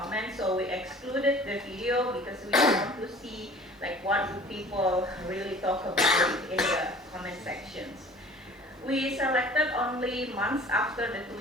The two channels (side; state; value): both; normal; correlation 0.46